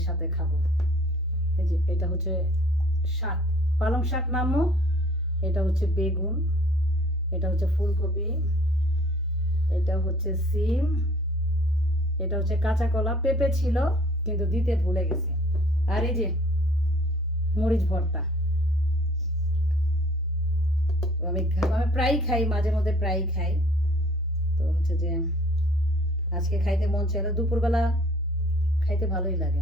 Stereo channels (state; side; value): normal; both; correlation 0.55